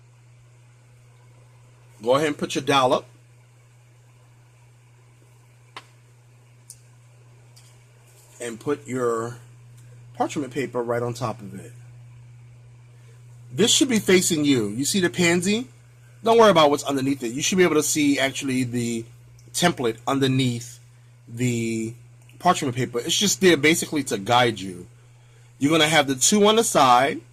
Go ahead and put your dollop. And put your parchment paper right on top of it. This should be facing you. You see the Pansy? Don't worry about what's underneath it. You should be able to see actually the template underneath the parchment paper. It's just there basically to guide you. You're going to have the 2 on the side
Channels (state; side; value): identical; both; correlation 1.00